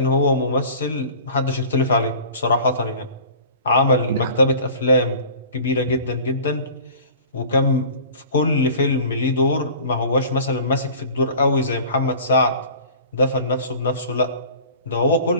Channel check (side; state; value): both; inverted; correlation -0.43